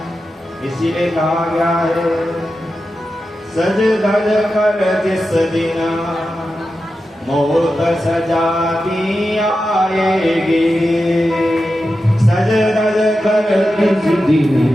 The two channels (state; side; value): normal; both; correlation 0.91